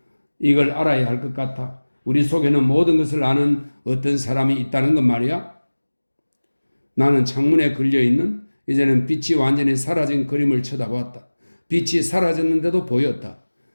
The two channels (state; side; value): inverted; both; correlation -1.00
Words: 이걸 알아야 할 것 같아. 우리 속에는 모든 것을 아는 어떤 사람이 있다는 것 말이야. 나는 창문에 걸려있는 이제는 빛이 완전히 사라진 그림을 쳐다보았다. 빛이 사라졌는데도 보였다.